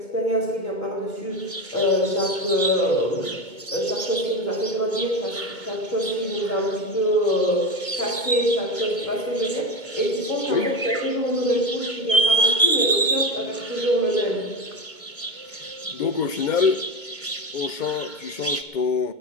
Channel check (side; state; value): right; late; 2.2 ms